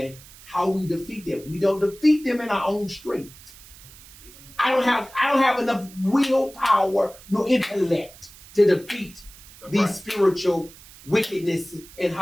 how we defeat them. We don't defeat them in our own strength. I don't have enough willpower nor intellect to defeat these spiritual wickedness in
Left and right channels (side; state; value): right; noise; hiss, 21 dB below the sound